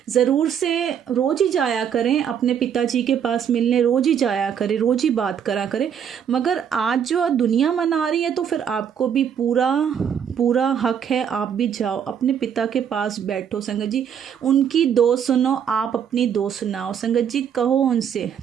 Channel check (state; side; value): quieter; left; 8.3 dB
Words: ज़रूर से रोज़ ही जाया करें अपने पिताजी के पास मिलने, रोज़ ही जाया करें, रोज़ ही बात करा करें। मगर आज जो दुनिया मना रही है तो फिर आपको भी पूरा हक है, आप भी जाओ अपने पिता के पास बैठो संगत जी, उनकी दो सुनो, आप अपनी दो सुनाओ संगत जी। कहो उनसे